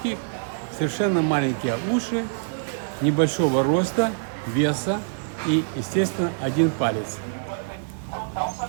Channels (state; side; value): silent; left; 62 dB below the other